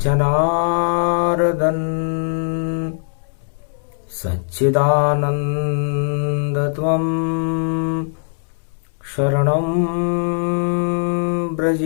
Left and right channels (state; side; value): silent; right; digital silence